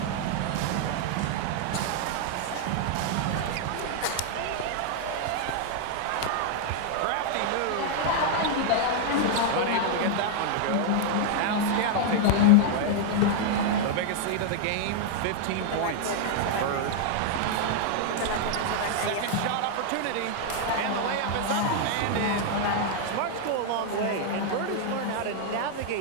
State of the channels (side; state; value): both; different; correlation 0.00